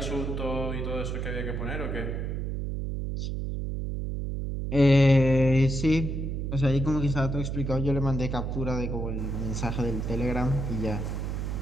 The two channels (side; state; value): right; noise; hum, 3 dB below the sound